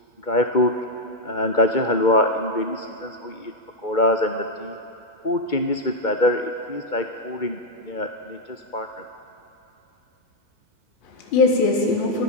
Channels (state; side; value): late; right; 2.4 ms